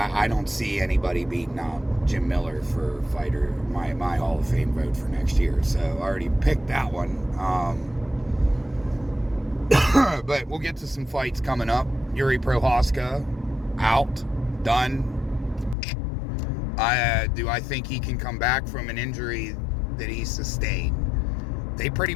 don't see anybody beating out Jim Miller for fighter, my Hall of Fame vote for next year. So I already picked that one. But we'll get to some fights coming up. Yuri Prohaska, out, done. Do I think he can come back from an injury that he sustained? They pretty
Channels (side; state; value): right; drops out; at 15.8 s